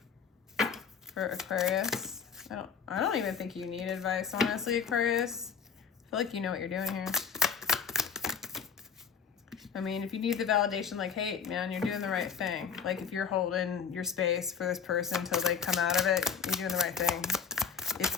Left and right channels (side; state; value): right; quieter; 6.6 dB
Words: for Aquarius? I don't even think you need advice, honestly, Aquarius. I feel like you know what you're doing here. I mean, if you need the validation, like, hey, man, you're doing the right thing. Like, if you're holding your space for this person until they come out of it, you're doing the right thing. It's